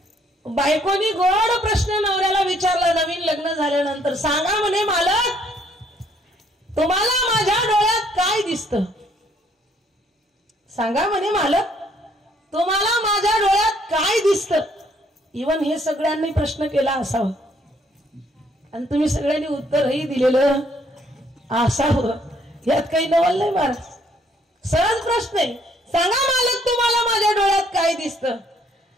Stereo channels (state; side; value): normal; both; correlation 0.66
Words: बायकोनी गोड प्रश्न नवऱ्याला विचारला नवीन लग्न झाल्यानंतर, सांगा म्हणे मालक तुम्हाला माझ्या डोळ्यात काय दिसतं? सांगा म्हणे मालक तुम्हाला माझ्या डोळ्यात काय दिसतं? इवन हे सगळ्यांनी प्रश्न केला असावा आणि तुम्ही सगळ्यांनी उत्तरही दिलेलं असावं. यात काही नवल नाही महाराज. सहज प्रश्न आहे. सांगा मालक तुम्हाला माझ्या डोळ्यात काय दिसतं?